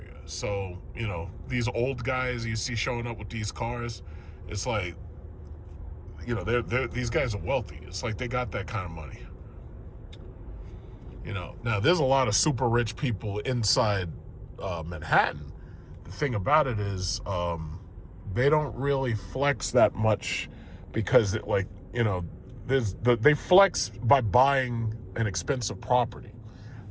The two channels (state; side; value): identical; both; correlation 1.00